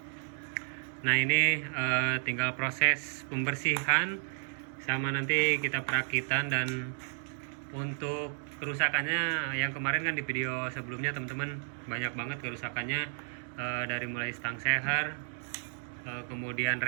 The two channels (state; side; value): silent; left; digital silence